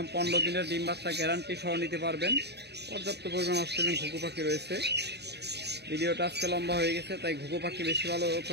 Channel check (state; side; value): late; left; 0.48 ms